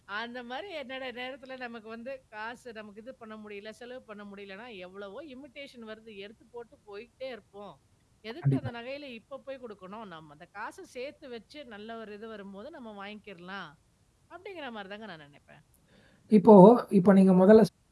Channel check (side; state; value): both; identical; correlation 1.00